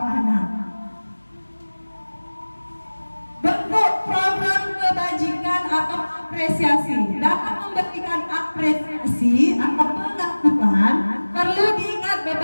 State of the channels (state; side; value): inverted; both; correlation -1.00